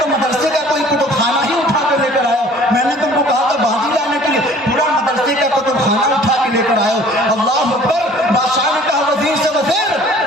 تو مدرسے کا کوئی کتب خانہ ہی اٹھا کر لے کر آئے ہو. میں نے تم کو کہا تھا باغی لانے کے لیے، پورا مدرسے کا کتب خانہ اٹھا کے لے کر آئے ہو. اللہ اکبر. بادشاہ نے کہا وزیر سے وزیر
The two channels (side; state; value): both; normal; correlation 0.51